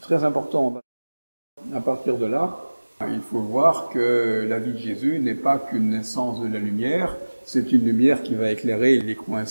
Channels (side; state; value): both; inverted; correlation -1.00